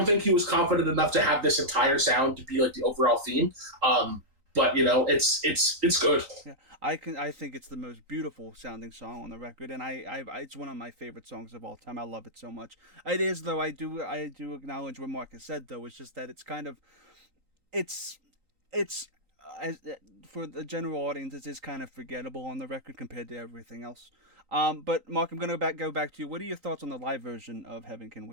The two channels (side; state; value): left; late; 3.9 ms